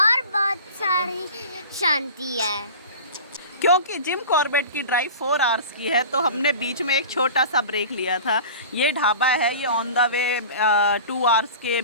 बहुत सारी शांति है। क्योंकि जिम कॉर्बेट की ड्राइव 4 आवर्स की है, तो हमने बीच में एक छोटा सा ब्रेक लिया था। ये ढाबा है, ये ऑन द वे 2 आवर्स के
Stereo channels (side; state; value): both; inverted; correlation -0.37